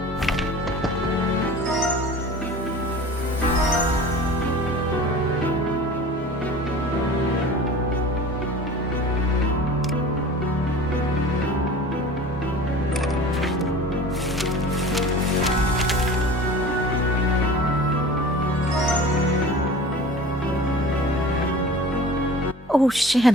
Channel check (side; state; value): both; normal; correlation 0.40